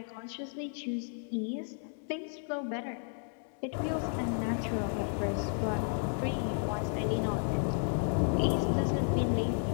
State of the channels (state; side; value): silent; right; 56 dB below the other